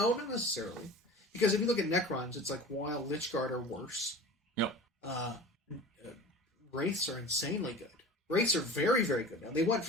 not necessarily. Because if you look at Necrons, it's like, while Lichguard are worse. Yep. Wraiths are insanely good. Wraiths are very, very good now. They went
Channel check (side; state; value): both; normal; correlation 0.38